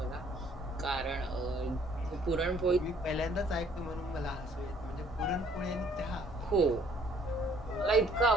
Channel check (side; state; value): both; normal; correlation 0.60